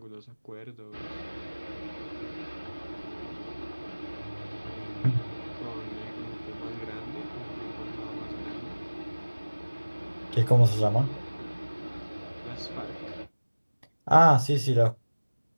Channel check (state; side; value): inverted; both; correlation -1.00